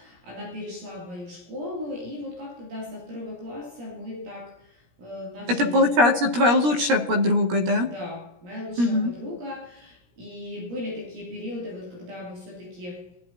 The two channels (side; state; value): left; late; 17 ms